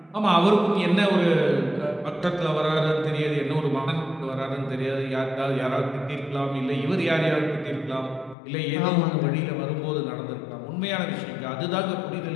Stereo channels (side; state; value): right; drops out; at 8.3 s